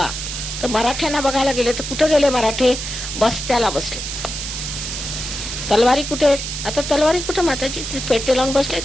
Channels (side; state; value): right; noise; hiss, 6 dB below the sound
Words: तर मराठ्यांना बघायला गेले तर कुठे गेले मराठे? बस्त्याला बसले. तलवारी कुठे? आता तलवारी कुठे माताजी? पेटे लावून बसले